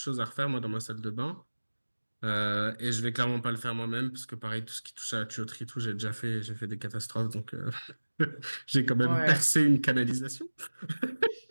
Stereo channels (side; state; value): both; inverted; correlation -1.00